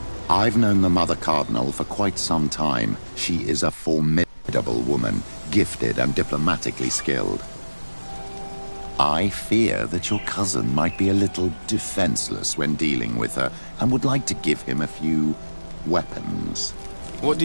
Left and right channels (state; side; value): inverted; both; correlation -1.00